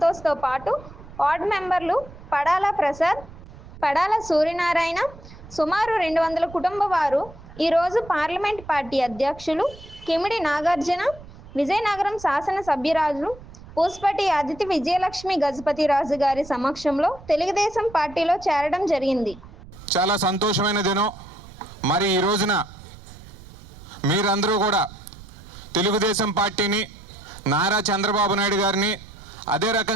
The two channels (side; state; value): right; noise; rumble, 18 dB below the sound